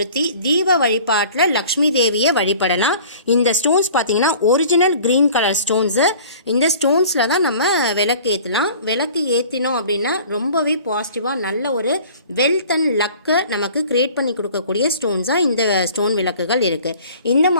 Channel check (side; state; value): both; inverted; correlation -0.47